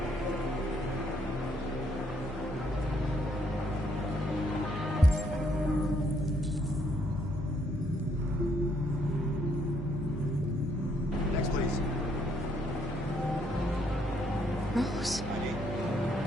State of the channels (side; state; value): both; normal; correlation 0.71